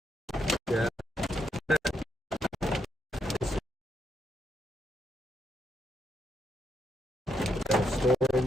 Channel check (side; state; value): both; normal; correlation 0.79